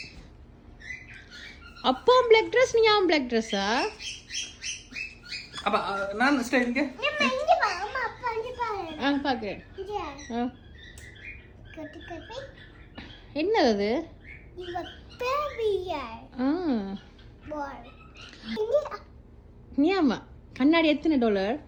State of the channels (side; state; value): both; identical; correlation 1.00